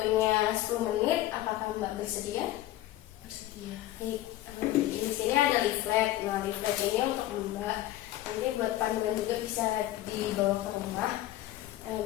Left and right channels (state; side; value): quieter; right; 14.7 dB